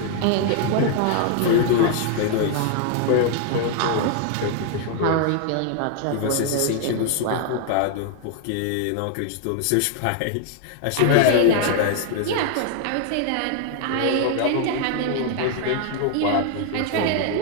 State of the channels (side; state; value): both; different; correlation 0.00